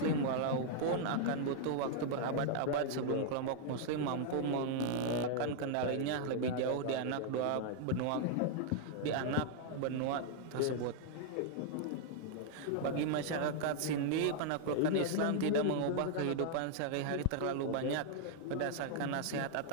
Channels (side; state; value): both; different; correlation -0.01